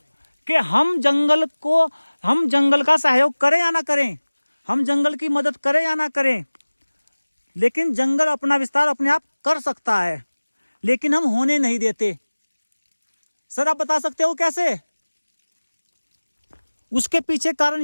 कि हम जंगल का सहयोग करें या ना करें, हम जंगल की मदद करें या ना करें, लेकिन जंगल अपना विस्तार अपने आप कर सकता है, लेकिन हम होने नहीं देते। सर आप बता सकते हो कैसे? उसके पीछे कारण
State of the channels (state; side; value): inverted; both; correlation -1.00